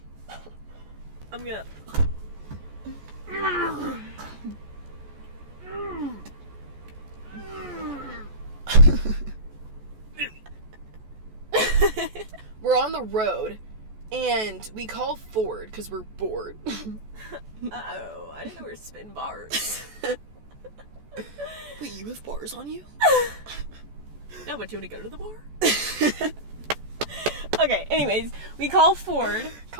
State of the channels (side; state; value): left; late; 14 ms